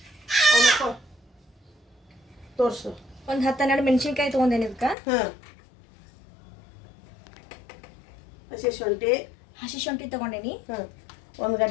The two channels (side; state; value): right; drops out; at 5.0 s